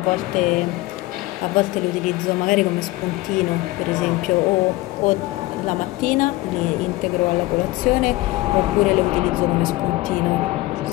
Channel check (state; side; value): quieter; right; 19.1 dB